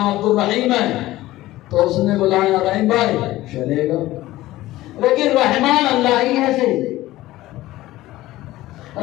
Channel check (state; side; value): quieter; right; 16.6 dB